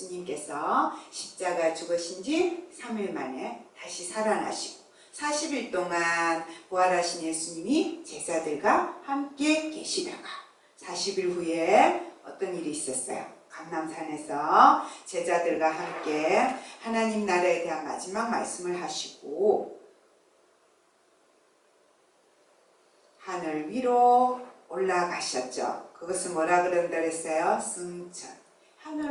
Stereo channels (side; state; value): both; identical; correlation 1.00